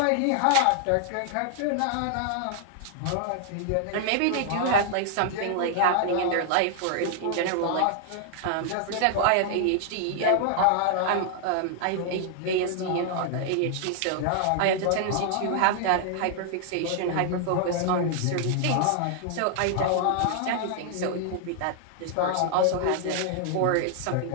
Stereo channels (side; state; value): both; different; correlation -0.01